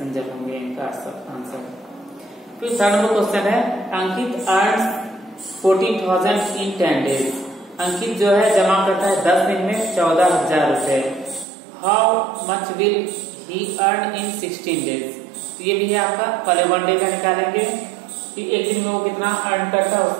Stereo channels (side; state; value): left; drops out; at 11.5 s